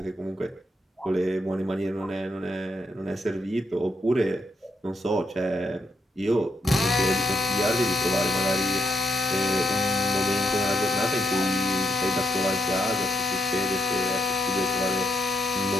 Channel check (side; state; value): both; normal; correlation 0.78